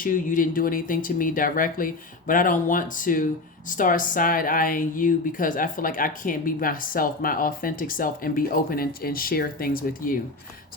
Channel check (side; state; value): right; quieter; 3.2 dB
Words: you. You didn't do anything to me directly, but I don't want to start side-eyeing you because I feel like I can't be myself, my authentic self, and be open and share things with you.